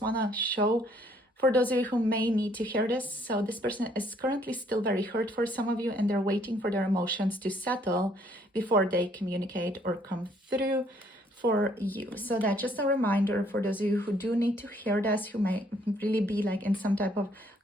to show for those of you who may need to hear this. So this person is currently still very hurt for some of you, and they're waiting for their emotions to settle before they communicate or come through for you. So that's just a reminder for those of you who do need to hear this, who may really be like in some type of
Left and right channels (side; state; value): both; normal; correlation 0.65